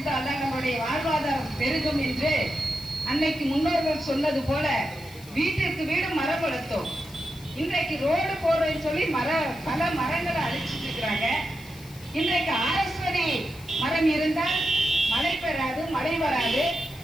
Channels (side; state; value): left; noise; hiss, 21 dB below the sound